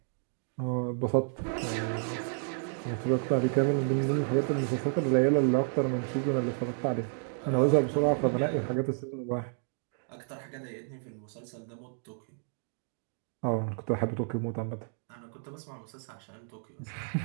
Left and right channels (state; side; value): silent; left; 57 dB below the other